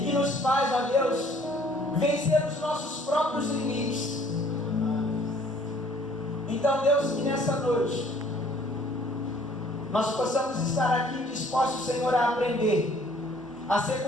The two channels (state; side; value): normal; both; correlation 0.58